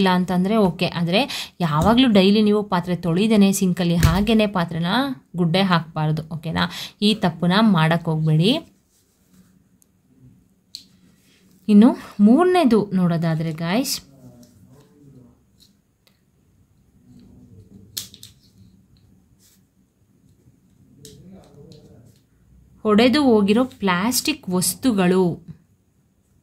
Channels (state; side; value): identical; both; correlation 1.00